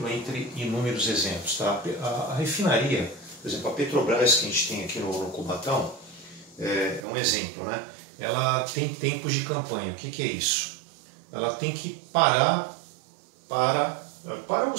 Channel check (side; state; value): left; drops out; at 7.1 s